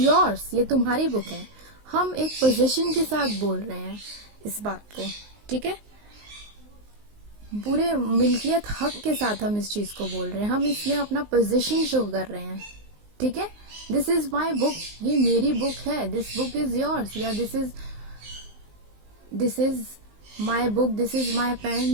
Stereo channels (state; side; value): late; left; 19 ms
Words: ये तुम्हारी बुक है। हम एक पोजीशन के साथ बोल रहे हैं इस बात को। ठीक है, पूरे मिल्कियत हक के साथ हम इस चीज को बोल रहे हैं, हम इसमें अपना पोजीशन शो कर रहे हैं। ठीक है, दिस इज माई बुक, ये मेरी बुक है। दिस बुक इज योर्स, या this is my book, this is my